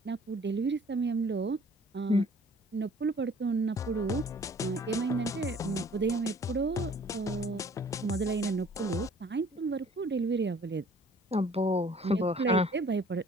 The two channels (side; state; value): both; normal; correlation 0.54